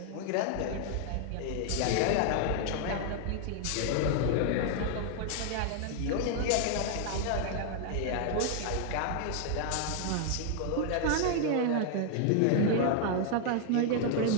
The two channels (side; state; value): both; different; correlation 0.00